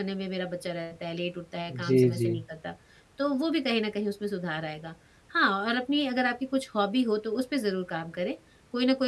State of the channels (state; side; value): identical; both; correlation 1.00